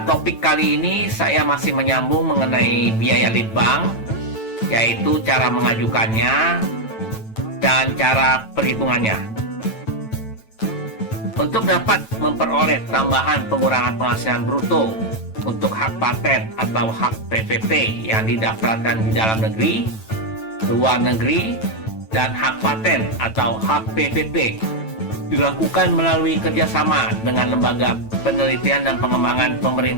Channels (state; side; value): late; right; 9.1 ms